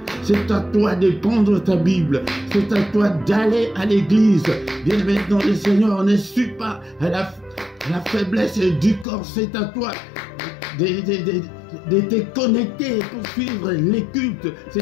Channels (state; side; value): drops out; right; at 9.1 s